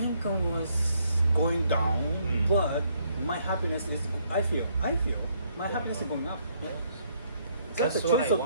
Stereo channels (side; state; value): both; inverted; correlation -0.70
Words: was going down, but my happiness is, I feel my happiness is going up. Yeah. That's a what choice I of